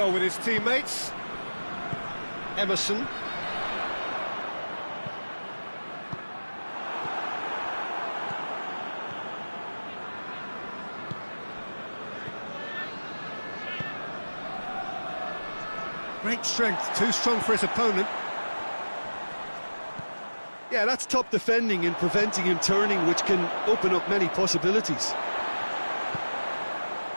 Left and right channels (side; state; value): both; inverted; correlation -1.00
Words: with his teammates. Emerson. Great strength, too strong for his opponent. Yeah, that's top defending and preventing him turning, which can open up many possibilities.